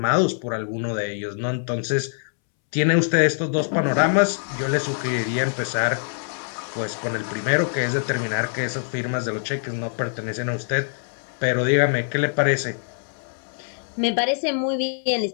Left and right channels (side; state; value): right; silent; 63 dB below the other